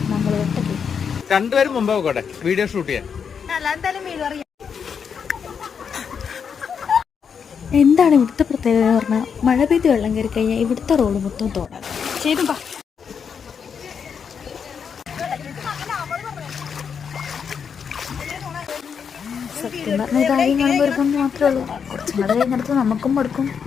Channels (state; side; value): quieter; right; 6.8 dB